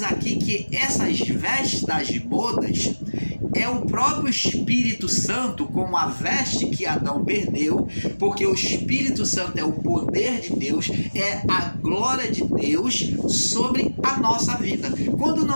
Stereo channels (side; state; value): both; inverted; correlation -1.00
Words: aqui que essas vestes das bodas é o próprio Espírito Santo como a veste que Adão perdeu, porque o Espírito Santo é o poder de Deus, é a glória de Deus sobre a nossa vida. Quando